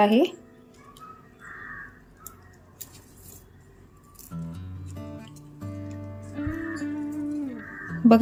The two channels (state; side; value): identical; both; correlation 1.00